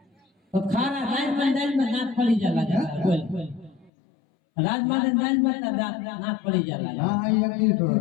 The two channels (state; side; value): drops out; right; at 3.9 s